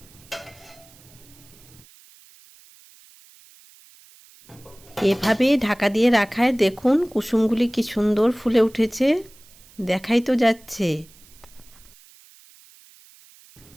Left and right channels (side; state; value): right; noise; hiss, 25 dB below the sound